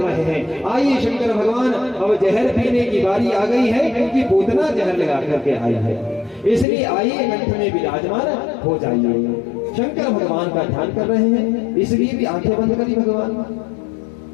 हैं। आइए शंकर भगवान, अब जहर पीने की बारी आ गई है, क्योंकि पूतना जहर लगा करके आई है, इसलिए आइए कंठ में विराजमान हो जाइए। शंकर भगवान का ध्यान कर रहे हैं, इसलिए भी आंखें बंद करी भगवान।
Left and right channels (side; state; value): right; drops out; at 6.7 s